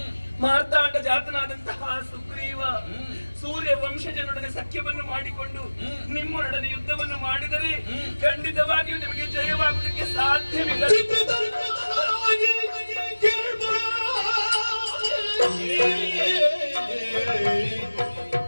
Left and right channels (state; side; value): inverted; both; correlation -1.00